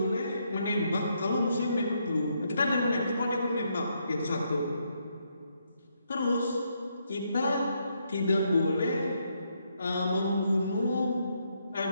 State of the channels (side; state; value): both; inverted; correlation -0.77